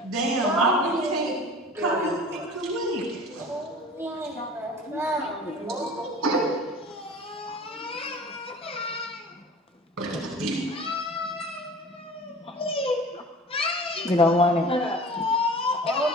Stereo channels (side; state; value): both; normal; correlation 0.41